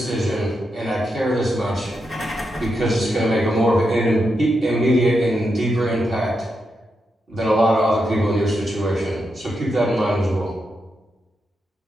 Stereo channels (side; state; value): both; normal; correlation 0.85